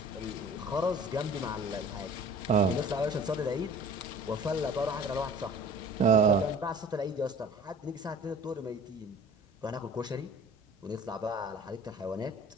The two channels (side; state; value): both; normal; correlation 0.46